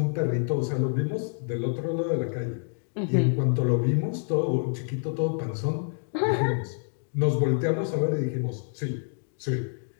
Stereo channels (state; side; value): silent; right; digital silence